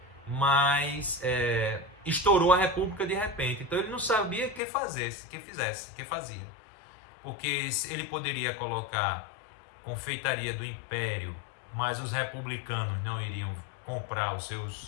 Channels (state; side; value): drops out; right; at 4.6 s